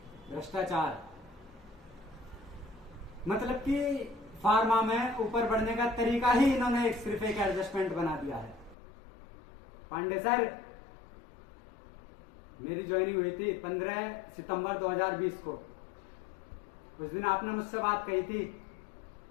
भ्रष्टाचार, मतलब कि फार्मा में ऊपर बढ़ने का तरीका ही इन्होंने सिर्फ एक एडजस्टमेंट बना दिया है। पांडे सर, मेरी ज्वाइनिंग हुई थी 15 सितंबर 2020 को। उस दिन आपने मुझसे बात कही थी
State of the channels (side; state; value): right; drops out; at 8.8 s